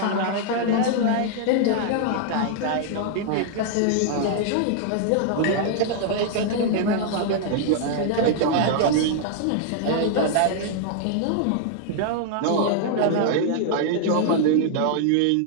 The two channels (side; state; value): both; different; correlation -0.01